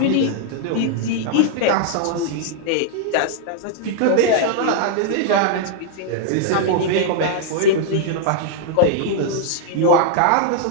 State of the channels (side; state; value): both; different; correlation -0.01